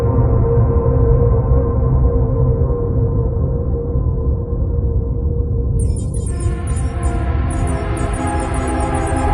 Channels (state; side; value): identical; both; correlation 1.00